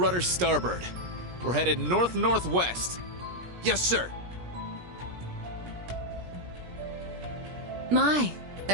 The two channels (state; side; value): late; left; 17 ms